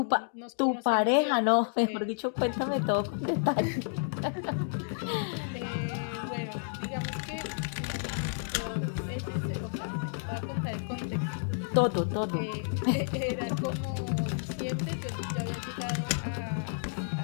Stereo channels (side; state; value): right; silent; digital silence